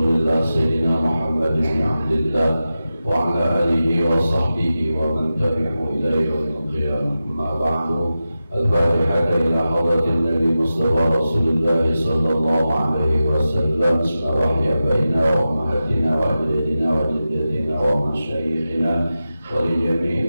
Sayyidina Muhammad bin Abdillah wa ala alihi wa sahbihi wa man tabi'ahu ila yaumil qiyamah. Amma ba'du. Al-Fatihah ila hadratin Nabi Mustafa Rasulullah sallallahu alaihi wasallam. Bismillahirrahmanirrahim. Baina wa ummahatina wa ajdadina wa jaddatina wa masyayikhina wa li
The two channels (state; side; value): inverted; both; correlation -0.93